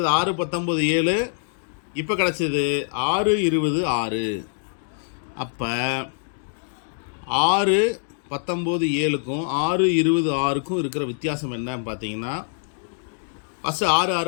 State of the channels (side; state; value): right; silent; digital silence